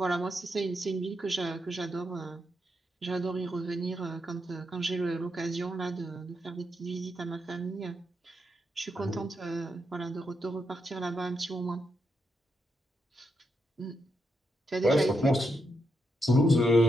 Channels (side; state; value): both; normal; correlation 0.82